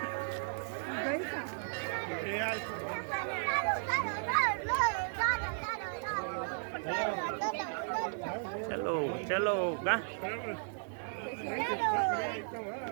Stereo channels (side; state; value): left; silent; digital silence